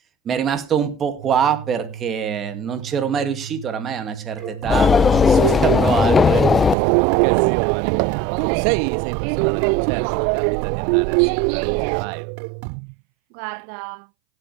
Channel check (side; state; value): left; drops out; at 6.8 s